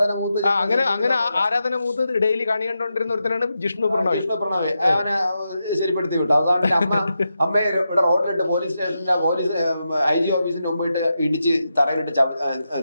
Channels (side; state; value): both; inverted; correlation -0.87